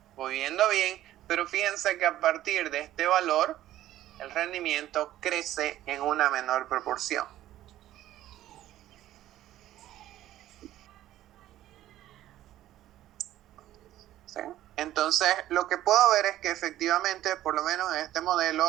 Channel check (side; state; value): left; quieter; 13.6 dB